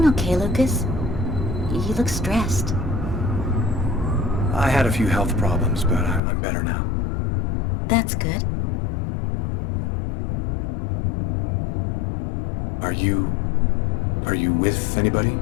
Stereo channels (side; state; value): right; drops out; at 6.2 s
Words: okay, Lucas? You look stressed. I had a few health problems, but I'm better now. That's good. Are you with anybody?